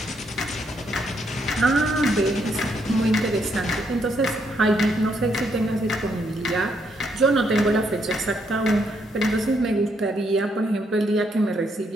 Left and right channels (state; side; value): normal; both; correlation 0.75